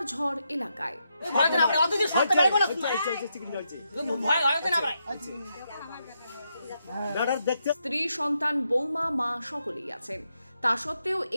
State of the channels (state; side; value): inverted; both; correlation -0.82